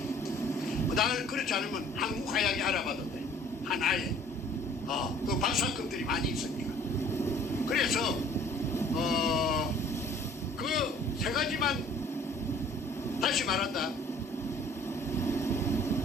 그렇지 않으면 한국 화약이 알아봐도 돼. 하나에 그 박사급들이 많이 있으니까. 그래서 그 세 가지만 다시 말한다.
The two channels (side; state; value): both; normal; correlation 0.54